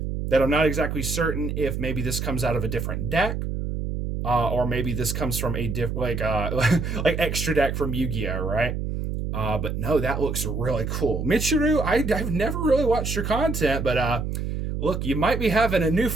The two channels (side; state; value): right; noise; hum, 3 dB below the sound